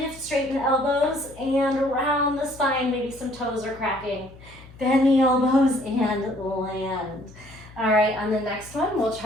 straighten the elbows, and around the spine. Maybe some toes are cracking. Bend the elbows and land. All right, on the next one, we'll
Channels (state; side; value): noise; left; hum, 21 dB below the sound